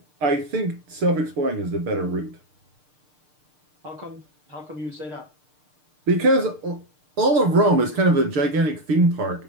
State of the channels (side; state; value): left; late; 6.6 ms